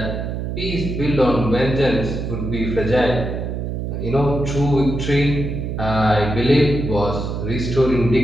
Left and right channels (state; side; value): noise; right; hum, 4 dB below the sound